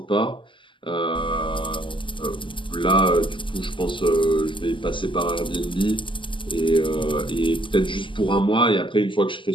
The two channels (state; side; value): late; right; 0.25 ms